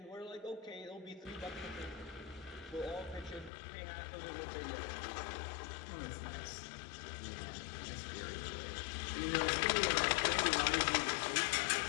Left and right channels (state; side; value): drops out; right; at 3.5 s